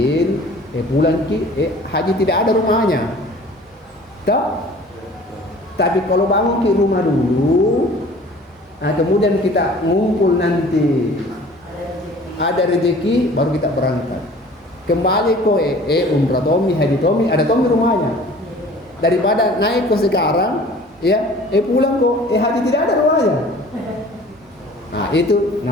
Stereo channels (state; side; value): normal; both; correlation 0.47